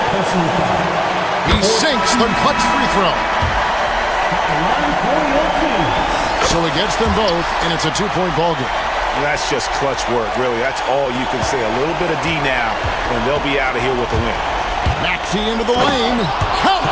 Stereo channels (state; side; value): identical; both; correlation 1.00